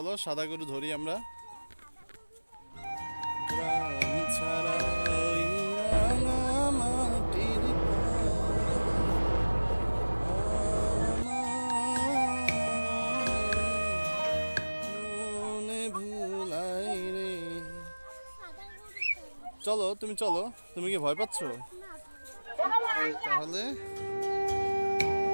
সাদা গরু ধরি আমরা। গ্রাম ছাড়া ওই রাঙা মাটির মনে ভুলাই রে। চলো তুমি চলো, তুমি কি ভয় পাচ্ছো? তাহলে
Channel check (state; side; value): inverted; both; correlation -1.00